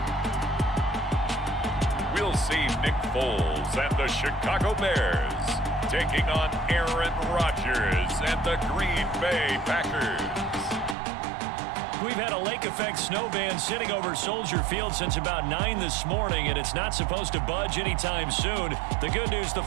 We'll see Nick Foles and the Chicago Bears taking on Aaron Rodgers and the Green Bay Packers. We've had a lake effect snow band sitting over Soldier Field since about 9 this morning, and it's not supposed to budge anytime soon. The good news, the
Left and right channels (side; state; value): left; drops out; at 11.0 s